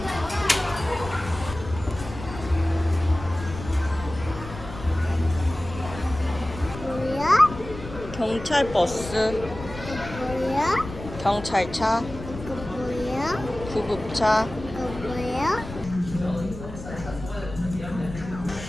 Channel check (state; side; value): noise; left; rumble, 11 dB below the sound